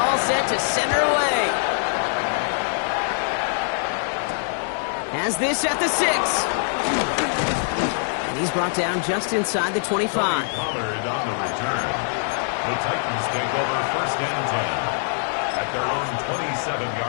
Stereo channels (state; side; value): silent; right; 57 dB below the other